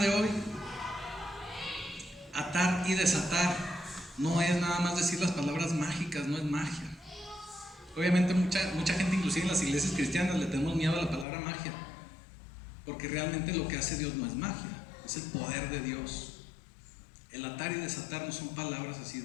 hoy, atar y desatar no es nada más decir las palabras mágicas, no es magia. Obviamente mucha gente, inclusive en las iglesias cristianas, le tenemos miedo a la palabra magia, porque realmente lo que hace Dios no es magia, es el poder de Dios. El atar y desatar no son palabras así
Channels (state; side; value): drops out; right; at 11.2 s